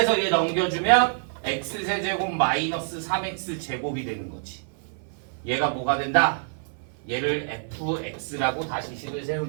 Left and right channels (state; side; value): silent; left; 55 dB below the other